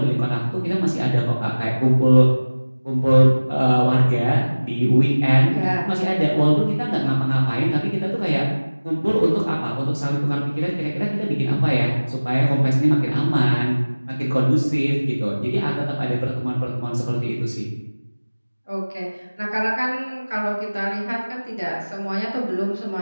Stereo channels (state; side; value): inverted; both; correlation -1.00